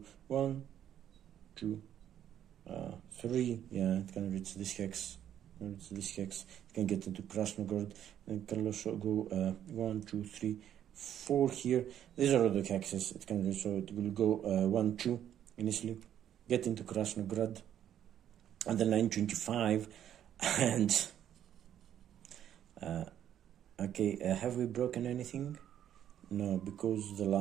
1, 2. 3, yeah, it can reach this hex. It can get into Krasnograd, and it can also go 1, 2, 3, 4 here. These are all the hexes it can reach, so it will go 1, 2 initially, get into Krasnograd, and then 925, and okay, have we broken anything? No, because the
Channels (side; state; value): left; quieter; 10.4 dB